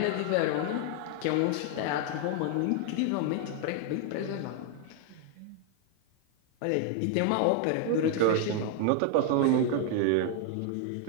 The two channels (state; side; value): different; both; correlation 0.00